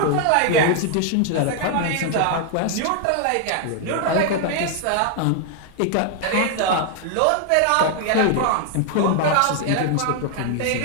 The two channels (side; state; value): both; different; correlation 0.00